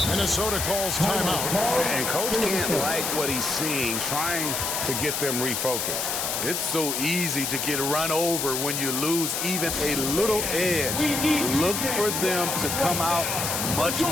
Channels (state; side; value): noise; left; hiss, 1 dB below the sound